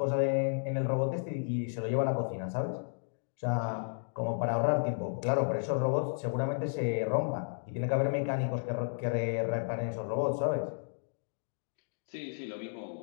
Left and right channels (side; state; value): right; silent; digital silence